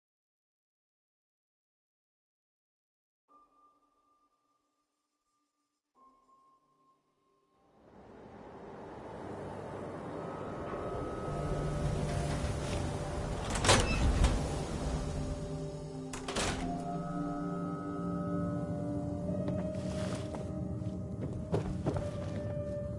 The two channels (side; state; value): both; identical; correlation 1.00